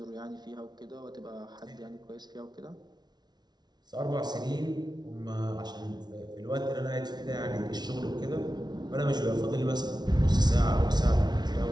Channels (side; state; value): left; late; 0.20 ms